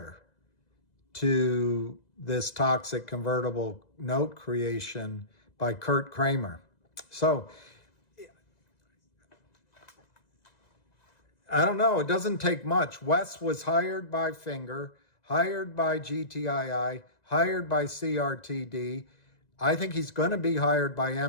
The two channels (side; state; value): right; late; 1.9 ms